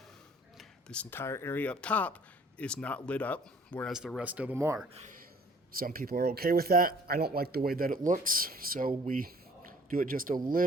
this entire area up top is not lit up, whereas the rest of them are. Some people are okay with that. I don't like the way that it looks, so we do it just a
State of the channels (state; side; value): normal; both; correlation 0.54